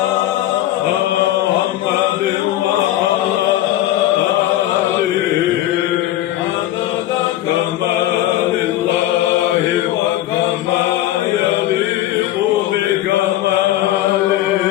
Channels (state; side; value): quieter; right; 14.1 dB